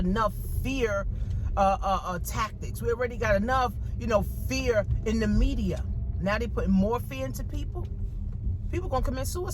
fear tactics. We already got enough, fear in the media. Now they putting more fear into people. People gonna commit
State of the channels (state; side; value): identical; both; correlation 1.00